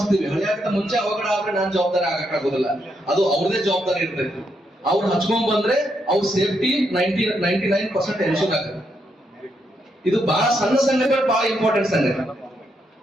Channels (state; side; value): normal; both; correlation 0.79